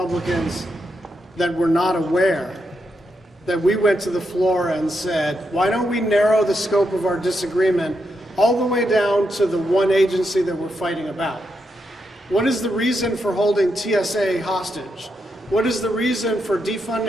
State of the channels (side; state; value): both; normal; correlation 0.83